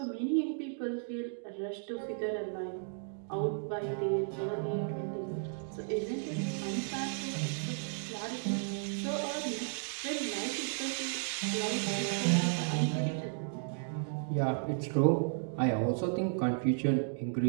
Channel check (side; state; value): left; silent; digital silence